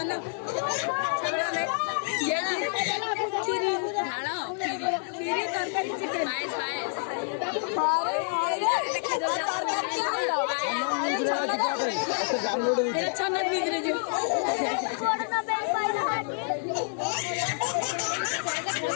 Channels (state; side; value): silent; right; 59 dB below the other